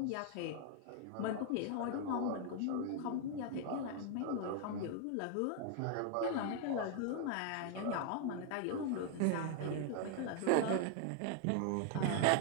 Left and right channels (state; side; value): different; both; correlation 0.00